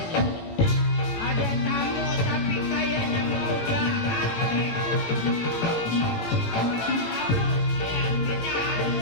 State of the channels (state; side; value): late; right; 17 ms